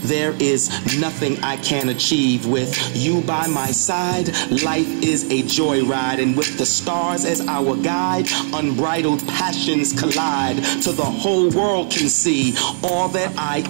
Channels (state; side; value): silent; left; digital silence